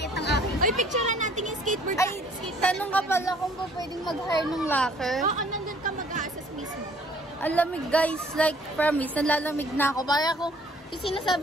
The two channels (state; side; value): normal; both; correlation 0.57